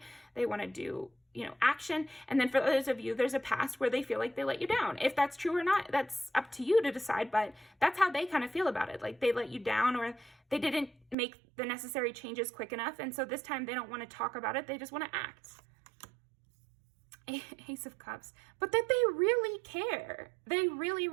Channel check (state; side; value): drops out; left; at 11.2 s